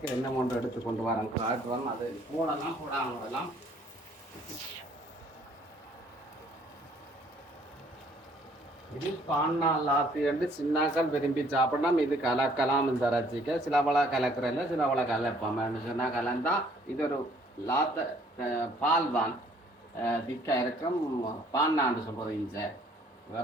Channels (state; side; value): normal; both; correlation 0.61